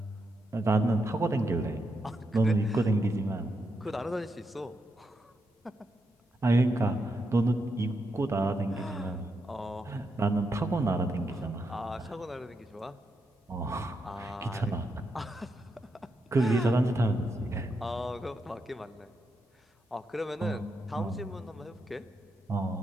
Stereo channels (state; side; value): normal; both; correlation 0.83